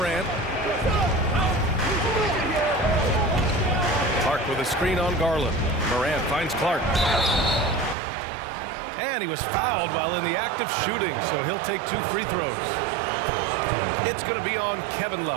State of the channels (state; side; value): drops out; left; at 8.0 s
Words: Clark with a screen on Garland. Morant finds Clark. And he was fouled while in the act of shooting, so he'll take 2 free throws. It's going to be on Kevin